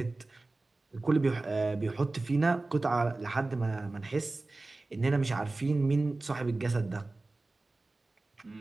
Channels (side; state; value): left; quieter; 3.2 dB